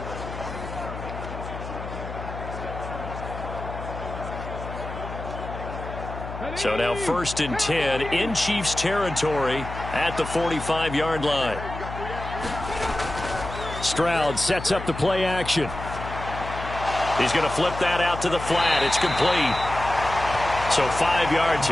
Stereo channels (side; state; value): left; noise; hum, 9 dB below the sound